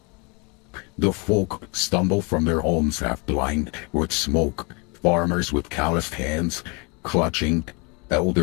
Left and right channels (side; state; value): right; quieter; 30.9 dB